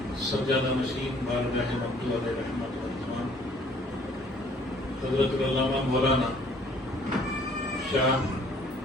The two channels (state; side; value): normal; both; correlation 0.58